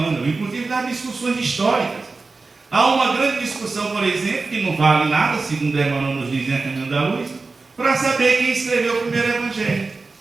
inclusive das discussões históricas. Há uma grande discussão, por exemplo, que não vale nada, segundo Emmanuel nos diz em A Caminho da Luz, para saber quem escreveu o primeiro Evangelho.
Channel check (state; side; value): quieter; left; 3.9 dB